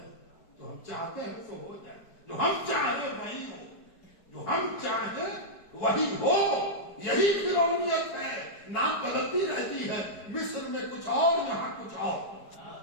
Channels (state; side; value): late; right; 4.7 ms